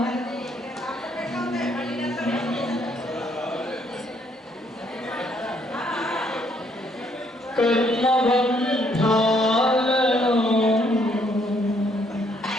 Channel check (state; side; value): normal; both; correlation 0.69